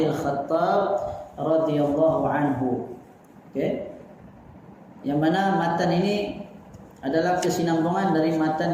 radhiyallahu anhu. Yang mana matan ini adalah kesinambungan dari matan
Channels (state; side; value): identical; both; correlation 1.00